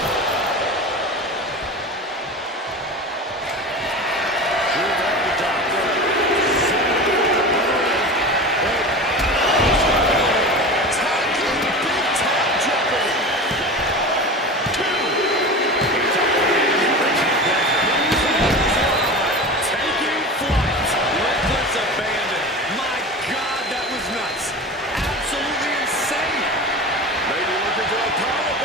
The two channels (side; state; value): both; normal; correlation 0.31